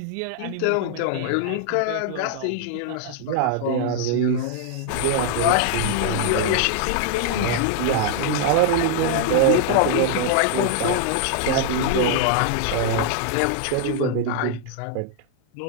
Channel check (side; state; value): both; different; correlation 0.00